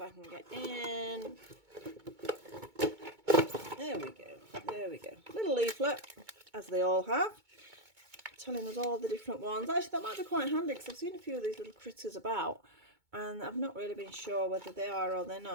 I can get in. There we go, there we go. Little leaflet, as they all have, telling us all the different ones. Actually, that might be quite handy, because I've seen a few of these little critters about, and I've not really been sure whether they are or they're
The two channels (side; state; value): left; late; 2.2 ms